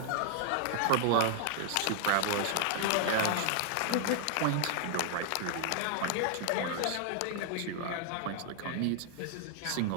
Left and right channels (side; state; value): both; different; correlation 0.00